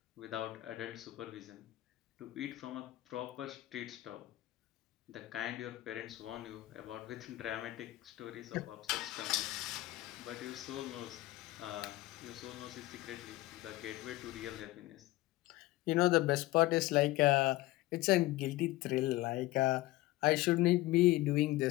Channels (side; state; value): right; quieter; 17.8 dB